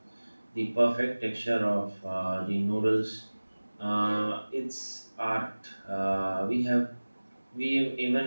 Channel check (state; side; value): inverted; both; correlation -1.00